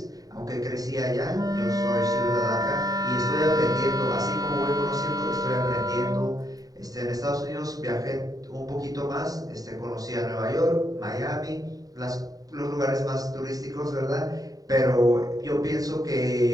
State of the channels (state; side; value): late; left; 0.18 ms